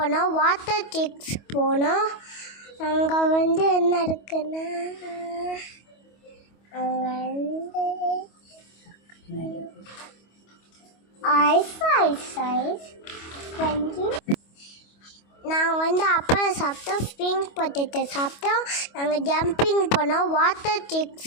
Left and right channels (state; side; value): late; right; 25 ms